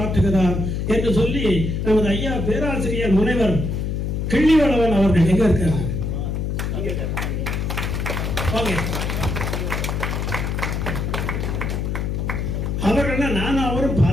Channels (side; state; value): left; noise; hum, 1 dB below the sound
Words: ஆற்றுகிறார் என்று சொல்லி நமது ஐயா பேராசிரியர் முனைவர் கிள்ளிவளவன் அவர்கள் எங்க இருக்காங்க? அவர்கள் நானும் அவரும்